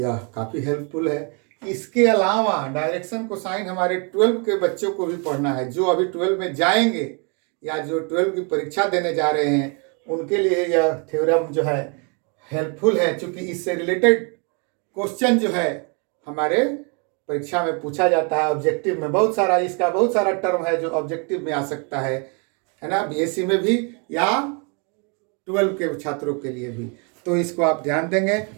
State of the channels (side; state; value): left; quieter; 35.7 dB